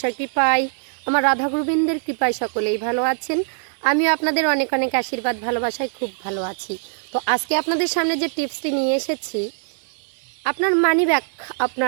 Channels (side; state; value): left; silent; 64 dB below the other